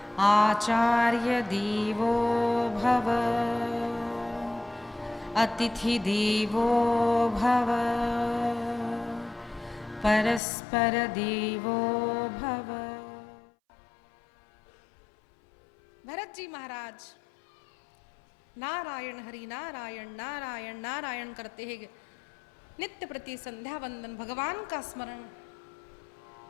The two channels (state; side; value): drops out; right; at 10.4 s